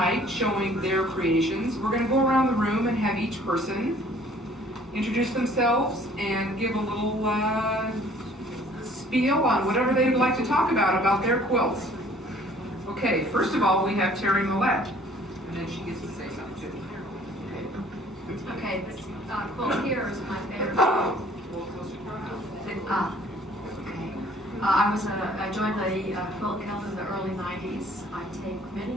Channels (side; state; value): both; normal; correlation 0.55